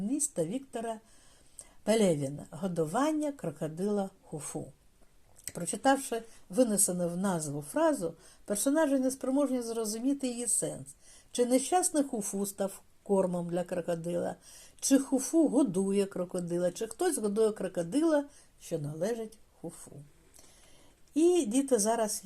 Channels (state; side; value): identical; both; correlation 1.00